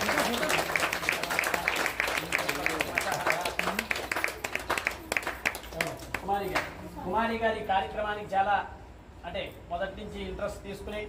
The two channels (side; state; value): both; identical; correlation 1.00